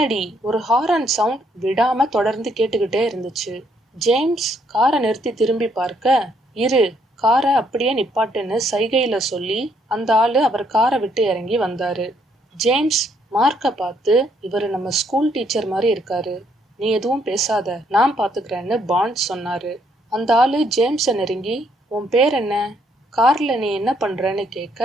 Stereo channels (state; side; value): normal; both; correlation 0.70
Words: ஒரு ஹாரன் சவுண்ட் விடாம தொடர்ந்து கேட்டுக்கிட்டே இருந்துச்சு. ஜேம்ஸ் காரை நிறுத்தி திரும்பி பார்க்க, இரு, காரை அப்படியே நிப்பாட்டுன்னு சைகையில சொல்லி அந்த ஆளு அவர் காரை விட்டு இறங்கி வந்தாரு. ஜேம்ஸ் மார்க்க பார்த்து, இவரு நம்ம ஸ்கூல் டீச்சர் மாதிரி இருக்காரு, நீ எதுவும் பேசாத, நான் பாத்துக்கிறேன்னு பாண்ட் சொன்னாரு. அந்த ஆளு ஜேம்ஸ நெருங்கி, உன் பேர் என்ன, கார்ல நீ என்ன பண்றன்னு